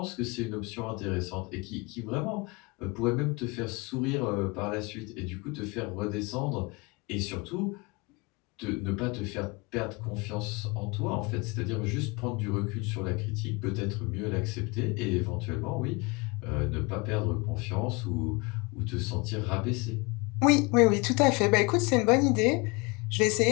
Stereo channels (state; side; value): quieter; right; 27.7 dB